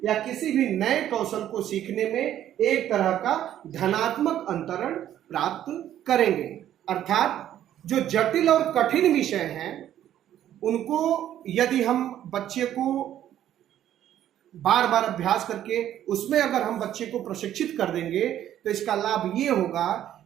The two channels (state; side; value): quieter; left; 11.5 dB